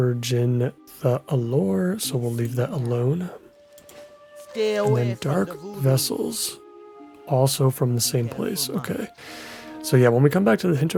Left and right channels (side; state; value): both; identical; correlation 1.00